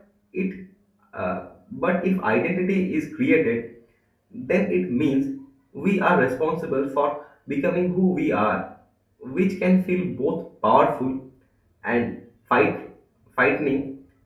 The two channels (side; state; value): both; identical; correlation 1.00